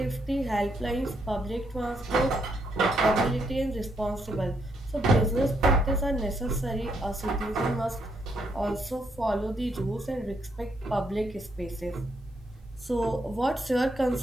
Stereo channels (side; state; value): both; normal; correlation 0.75